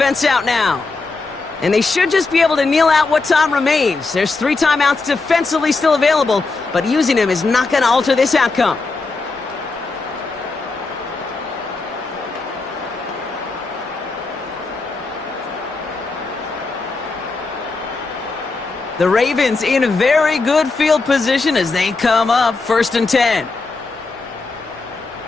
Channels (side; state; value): right; quieter; 3.8 dB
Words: out now. And they should just be able to kneel out what time remains. There's 3 timeouts defensively still available, but using them is not going to alter this outcome. The Ravens in very good field position as they come up 1st and 10.